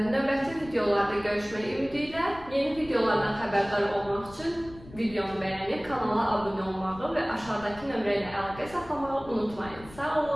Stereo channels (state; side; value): noise; left; rumble, 19 dB below the sound